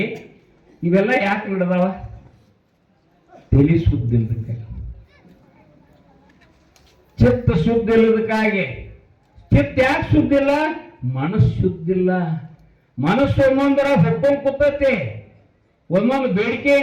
ಇವೆಲ್ಲ ಯಾಕೆ ನಡೆದಾವ? ತಲೆ ಶುದ್ಧ ಇಲ್ಲದಕ್ಕಾಗಿ, ಚಿತ್ತ ಶುದ್ಧ ಇಲ್ಲದಕ್ಕಾಗಿ. ಚಿತ್ತ ಯಾಕೆ ಶುದ್ಧ ಇಲ್ಲ? ಮನಸ್ಸು ಶುದ್ಧ ಇಲ್ಲ. ಮನಸ್ಸು ಒಂದೊಂದರ ಹೊಕ್ಕೊಂಡ್ ಕೂತೈತಿ, ಒಂದೊಂದು ಬೇಡಿಕೆ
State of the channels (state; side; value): identical; both; correlation 1.00